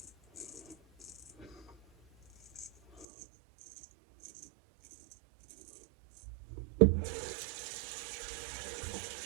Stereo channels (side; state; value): left; drops out; at 3.1 s